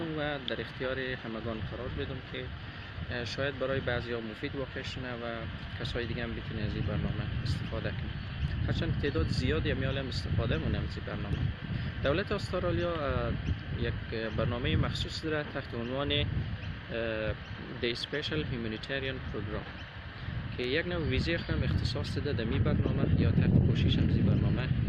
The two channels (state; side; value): identical; both; correlation 1.00